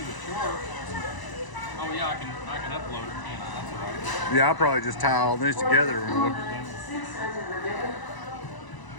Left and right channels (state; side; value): late; right; 1.0 ms